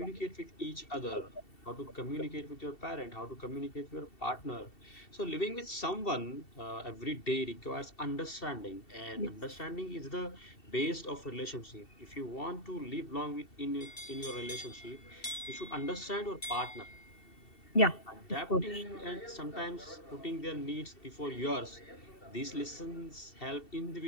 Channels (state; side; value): late; right; 2.7 ms